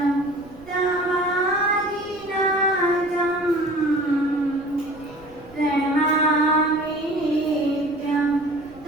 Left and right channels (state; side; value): noise; right; rumble, 24 dB below the sound